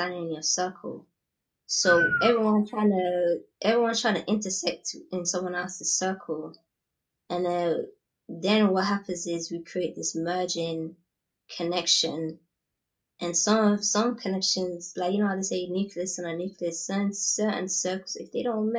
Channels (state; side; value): identical; both; correlation 1.00